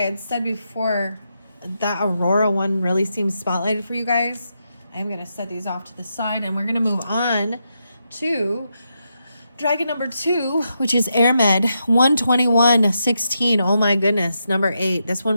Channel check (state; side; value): inverted; both; correlation -0.84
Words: said before, that Aurora one really seems spotlighted for you guys. I'm going to set these off to the side, and we're going to move on to dragon number 2, which is Airmed 12116. Oh my goodness. Number 8. This